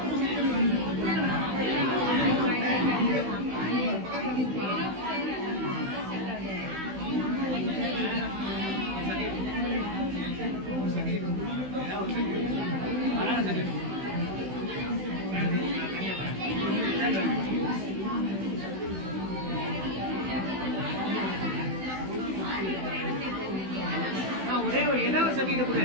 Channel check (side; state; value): left; late; 16 ms